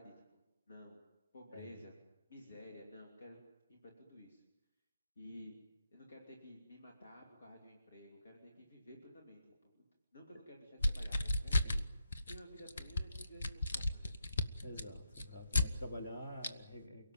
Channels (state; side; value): inverted; both; correlation -0.82